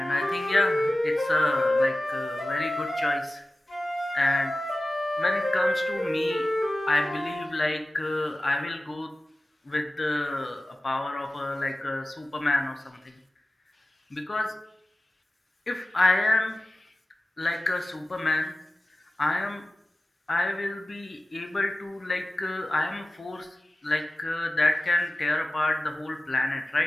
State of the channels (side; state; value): both; normal; correlation 0.96